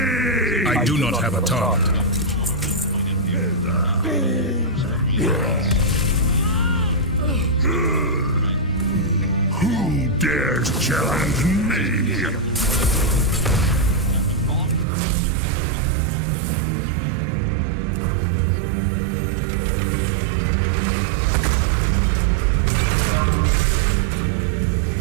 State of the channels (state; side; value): drops out; left; at 14.9 s